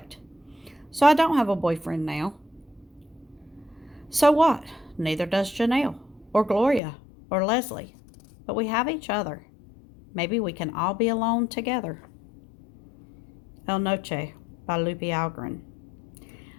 So I don't have a boyfriend now. So what? Neither does Janelle, or Gloria, or Leslie. But we have each other. Maybe we can all be alone together. El Noche by Lupe Algarin.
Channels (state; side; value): drops out; right; at 6.8 s